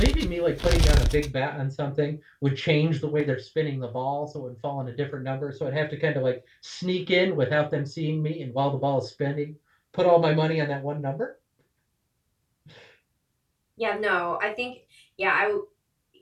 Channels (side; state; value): both; identical; correlation 1.00